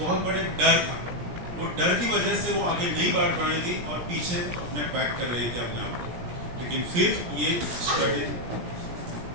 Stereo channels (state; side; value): late; left; 17 ms